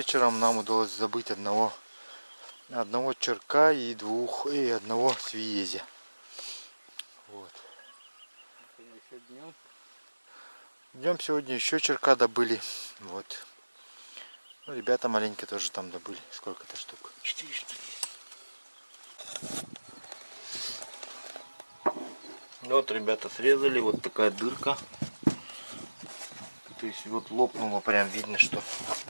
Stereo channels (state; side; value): inverted; both; correlation -1.00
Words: нам удалось забыть одного черка и одного свиезя. Вот. Днем сегодня еще черка добыли. Вот. Ну, ребята маленькие тоже там добыли. Сколько-то штук? 4 штуки. Вот ребята срезали, вот такая дырка. То есть вот лопнуло, прям видно, что.